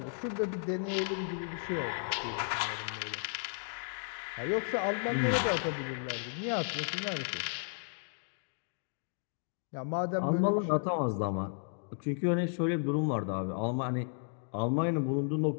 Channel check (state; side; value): silent; right; digital silence